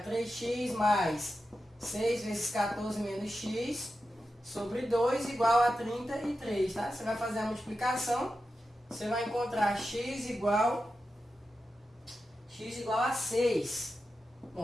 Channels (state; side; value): normal; both; correlation 0.91